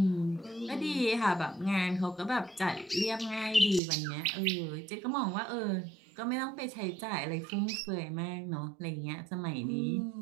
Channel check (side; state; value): left; drops out; at 3.8 s